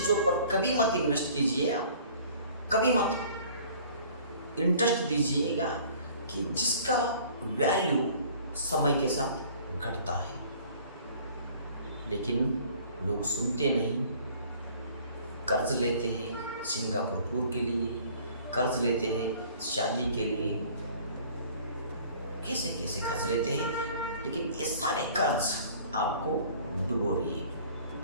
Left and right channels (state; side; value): inverted; both; correlation -0.51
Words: पर कभी मत इन्वेस्ट कीजिए, कभी मत। इंटरेस्ट दीजिएगा कि जिसका वैल्यू समय के साथ घटता है। लेकिन लोग सुनते नहीं, कर्ज लेते हैं सिंगापुर टूर के लिए, कर्ज लेते हैं शादी के लिए, कैसे कैसे कर्ज लेते हैं, लेकिन ये सारे कर्ज आपको डुबो रही है।